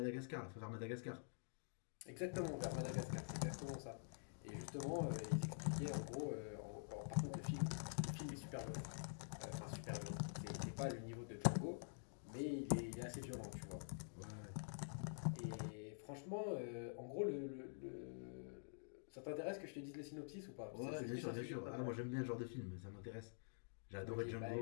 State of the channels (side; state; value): right; silent; digital silence